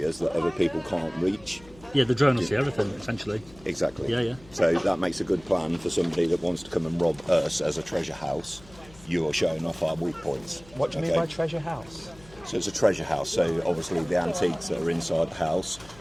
that other people can't reach. Yeah, the drone will see everything, essentially. Exactly. Yeah, yeah. So that makes a good plan for somebody that wants to come and rob us as a treasure house. You're showing off our weak points. What do you mean okay? by treasure house? So it's a treasure house, so obviously the antiques that are inside the house,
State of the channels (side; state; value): left; noise; hum, 24 dB below the sound